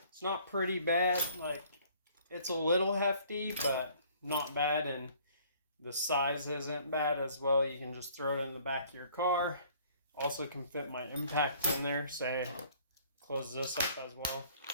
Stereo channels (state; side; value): inverted; both; correlation -0.57